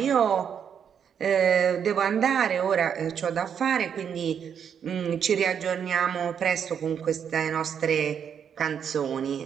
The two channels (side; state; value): left; quieter; 7.8 dB